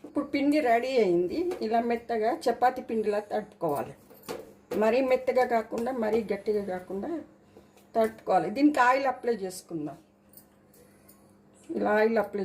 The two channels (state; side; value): identical; both; correlation 1.00